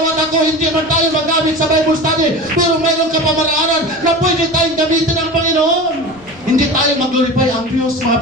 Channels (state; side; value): noise; left; rumble, 25 dB below the sound